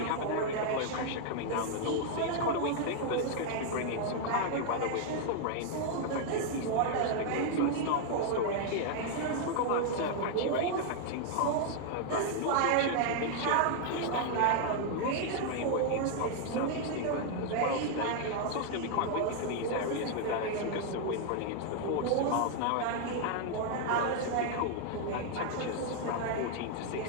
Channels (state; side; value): different; both; correlation 0.00